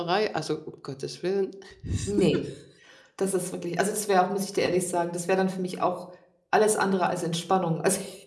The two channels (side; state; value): both; identical; correlation 1.00